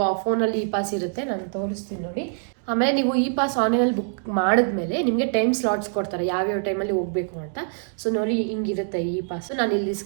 ಫೋನಲ್ಲಿ ಇ ಪಾಸ್ ಇರುತ್ತೆ, ನಾನು ತೋರಿಸ್ತೀನಿ ನೋಡಿ. ಆಮೇಲೆ ನೀವು ಈ ಪಾಸ್ ಆನ್ಲೈನಲ್ಲಿ ಬುಕ್ ಮಾಡಿದ್ಮೇಲೆ ನಿಮಗೆ ಟೈಮ್ ಸ್ಲಾಟ್ಸ್ ಕೊಡ್ತಾರೆ ಯಾವ್ಯಾವ ಟೈಮಲ್ಲಿ ಹೋಗಬೇಕು ಅಂತ. ಸೊ ನೋಡಿ ಹಿಂಗಿರುತ್ತೆ ಈ ಪಾಸು, ನಾನು ಇಲ್ಲಿ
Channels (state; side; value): silent; left; 62 dB below the other